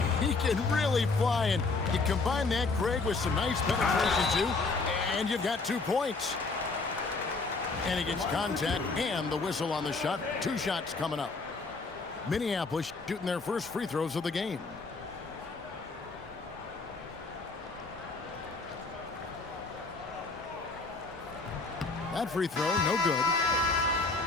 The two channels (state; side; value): quieter; right; 3.8 dB